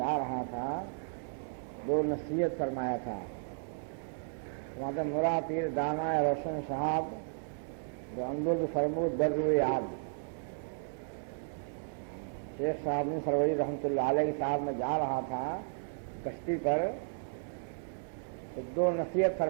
رہا تھا دو نصیحت فرمایا تھا. فرماتے مرا پیر دانا روشن صاحب جو اندر فرمود در روئے آب. شیخ صاحب نے سروری رحمۃ اللہ علیہ کے ساتھ میں جا رہا تھا کشتی پر تو دو نصیحت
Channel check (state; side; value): silent; left; digital silence